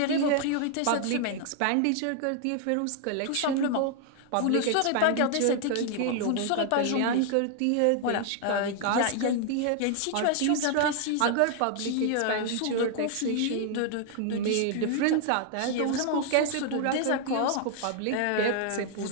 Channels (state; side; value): different; both; correlation 0.00